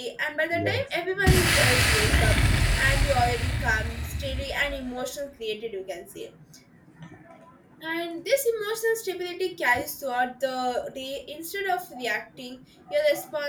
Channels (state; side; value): identical; both; correlation 1.00